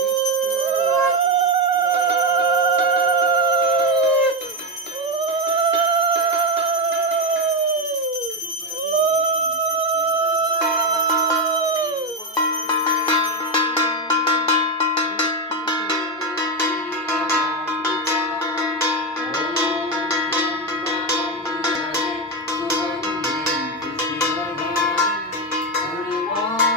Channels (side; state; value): both; normal; correlation 0.10